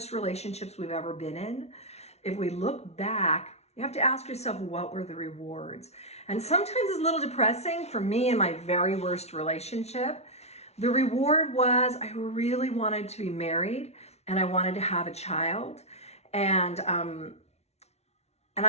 relationships we've ever been in, if we look back, you have to ask yourself, what were the rewards? And sometimes it's a little depressing. For me in my very worst relationship, the reward was I really wanted to be married and I wanted to have a child. And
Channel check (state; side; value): late; right; 0.31 ms